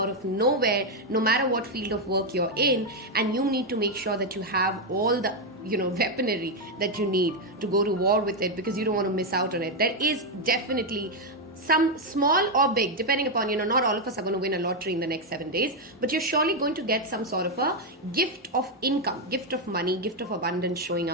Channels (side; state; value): both; normal; correlation 0.03